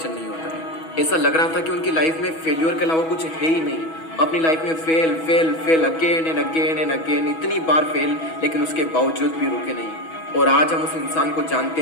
नहीं होता है। ऐसा लग रहा था कि उनकी लाइफ में फेल्योर के अलावा कुछ है ही नहीं। अपनी लाइफ में fail fail fail again and again and again, इतनी बार फेल, लेकिन उसके बावजूद भी रुके नहीं। और आज हम उस इंसान को जानते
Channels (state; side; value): late; right; 6.2 ms